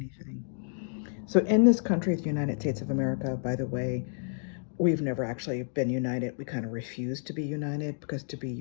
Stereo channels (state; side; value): silent; right; digital silence